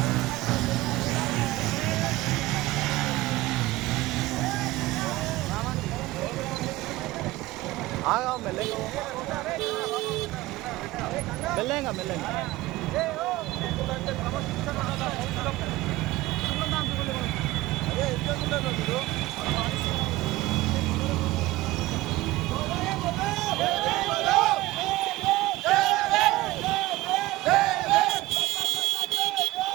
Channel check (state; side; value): quieter; left; 18.4 dB